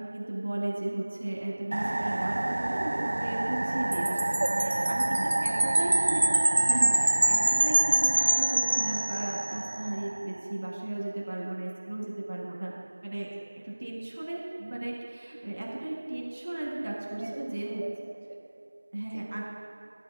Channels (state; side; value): inverted; both; correlation -1.00